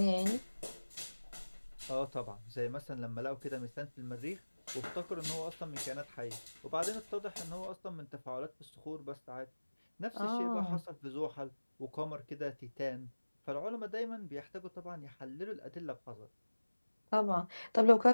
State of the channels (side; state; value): both; inverted; correlation -1.00